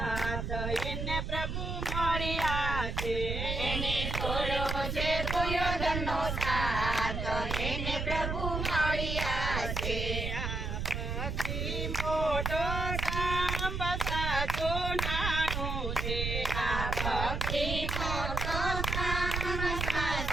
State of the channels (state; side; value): noise; right; rumble, 2 dB below the sound